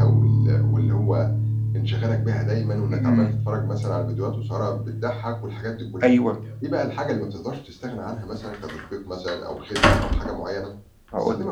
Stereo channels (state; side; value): identical; both; correlation 1.00